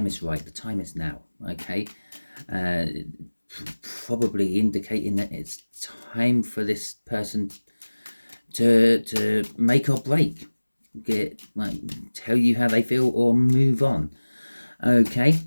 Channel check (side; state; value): both; inverted; correlation -1.00